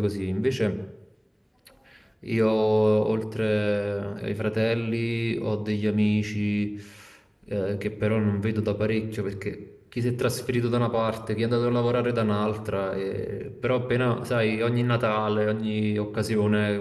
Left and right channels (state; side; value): identical; both; correlation 1.00